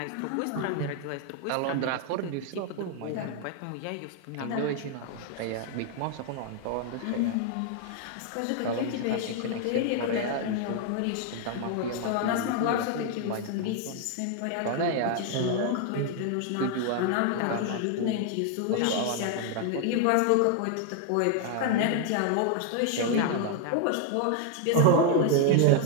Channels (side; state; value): both; different; correlation 0.00